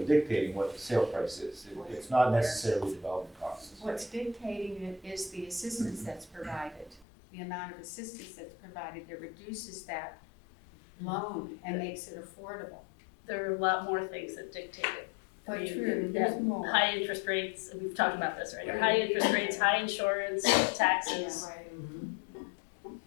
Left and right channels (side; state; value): right; drops out; at 7.1 s